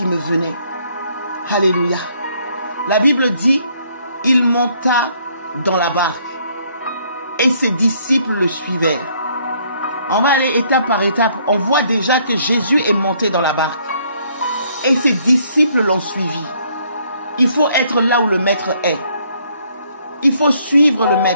me venait. Alléluia. La Bible dit, il monta dans la barque et ses disciples le suivèrent. On va aller étape par étape. On voit déjà que Jésus est monté dans la barque et ses disciples l'ont suivi. Il faut être là où le maître est. Il faut suivre le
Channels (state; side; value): inverted; both; correlation -0.66